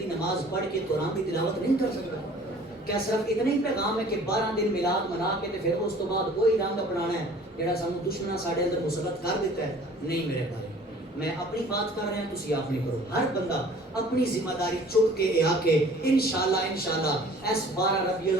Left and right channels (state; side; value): normal; both; correlation 0.50